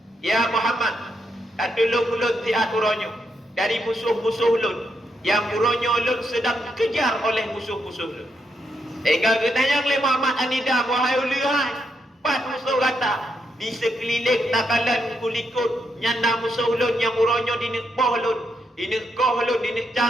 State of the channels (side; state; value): both; normal; correlation 0.80